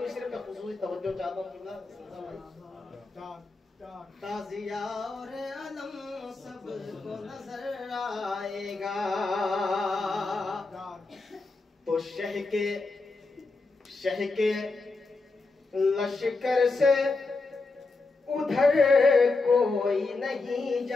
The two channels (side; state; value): right; quieter; 3.6 dB